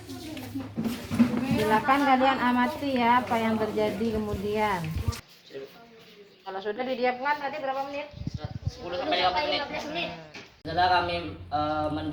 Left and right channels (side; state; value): both; identical; correlation 1.00